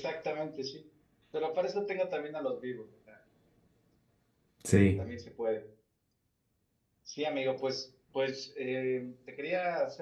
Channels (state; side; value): identical; both; correlation 1.00